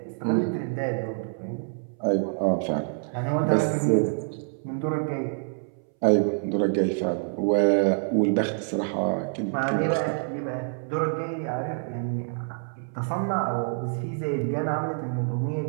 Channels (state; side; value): silent; left; 60 dB below the other